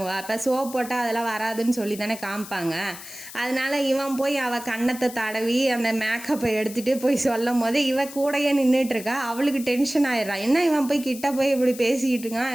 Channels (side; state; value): left; noise; hiss, 14 dB below the sound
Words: இப்போ சோப் போட்டால் அதெல்லாம் வராதுன்னு சொல்லி தானே காமிப்பாங்க. அதனால இவன் போய் அவள் கன்னத்தை தடவி அந்த மேக்கப்பை எடுத்துகிட்டு போய் சொல்லும் போது இவ கூடையே நின்றுட்டுருக்கா. அவளுக்கு டென்ஷன் ஆயிடுறா. என்ன இவன் போய் கிட்ட போய் இப்படி பேசிக்கிட்டு